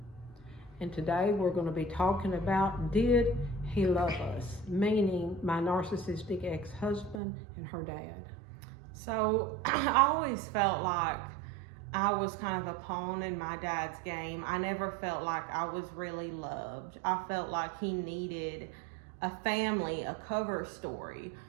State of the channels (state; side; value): drops out; left; at 7.2 s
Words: and today we're going to be talking about Did He Love Us? Meaning my narcissistic ex-husband and her dad. So I always felt like I was kind of a pawn in my dad's game. I never felt like I was really loved. I felt like he needed a family, a cover story